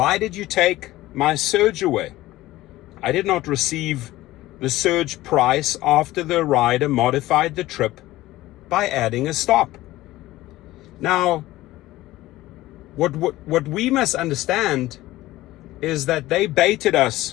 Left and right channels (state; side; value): quieter; right; 16.9 dB